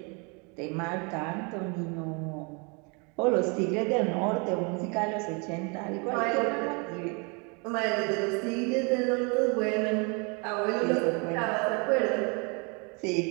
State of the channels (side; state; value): left; quieter; 32.7 dB